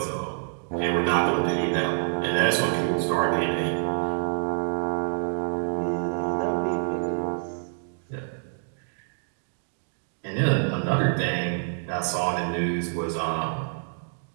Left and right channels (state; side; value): silent; left; digital silence